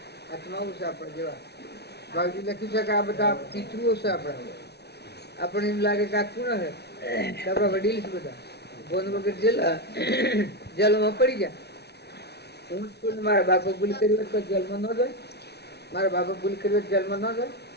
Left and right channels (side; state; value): right; late; 0.49 ms